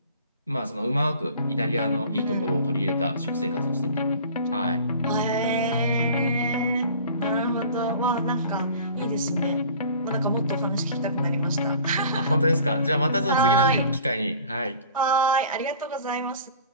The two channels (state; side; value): inverted; both; correlation -0.45